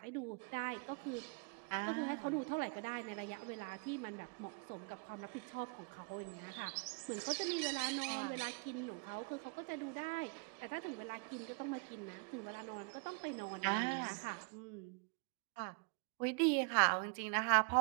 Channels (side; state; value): left; quieter; 35.5 dB